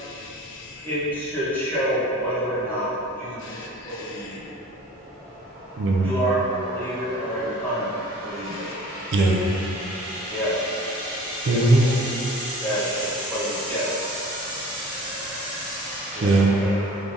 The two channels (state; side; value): normal; both; correlation 0.47